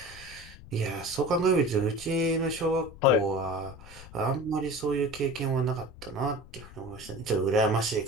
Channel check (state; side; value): noise; left; rumble, 18 dB below the sound